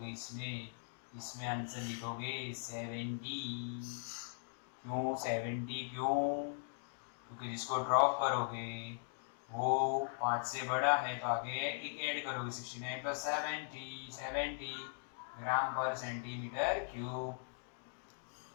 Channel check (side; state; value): right; silent; digital silence